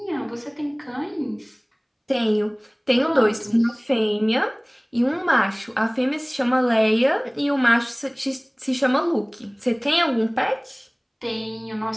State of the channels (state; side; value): identical; both; correlation 1.00